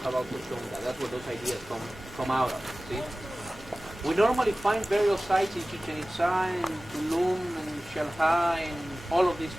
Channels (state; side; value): normal; both; correlation 0.97